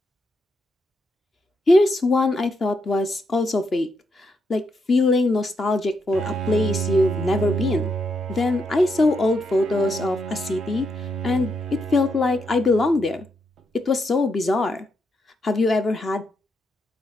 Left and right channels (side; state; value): both; normal; correlation 0.80